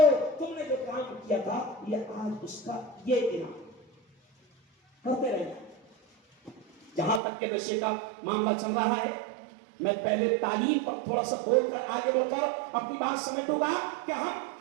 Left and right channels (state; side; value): drops out; left; at 7.2 s